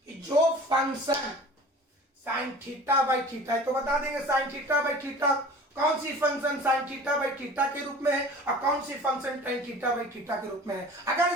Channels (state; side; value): normal; both; correlation 0.42